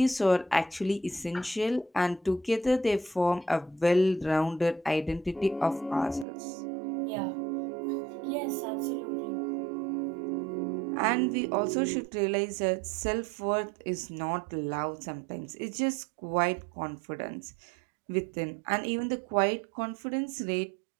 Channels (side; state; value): left; drops out; at 6.2 s